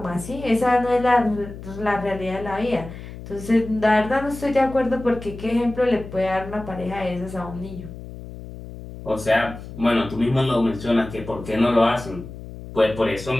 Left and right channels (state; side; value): noise; left; hum, 13 dB below the sound